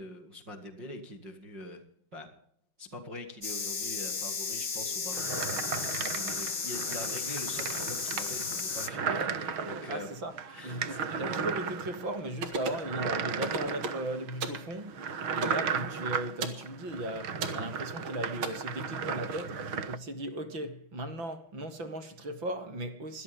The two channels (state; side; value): late; left; 5.7 ms